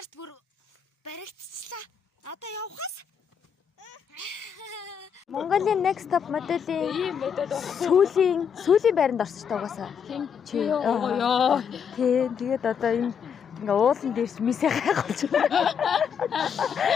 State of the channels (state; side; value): quieter; right; 7.3 dB